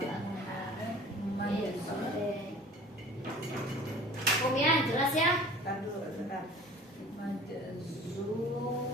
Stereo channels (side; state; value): both; normal; correlation 0.45